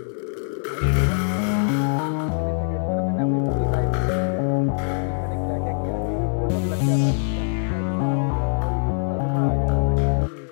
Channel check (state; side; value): silent; right; 63 dB below the other